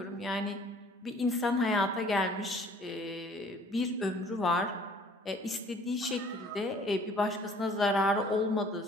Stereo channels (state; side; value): normal; both; correlation 0.55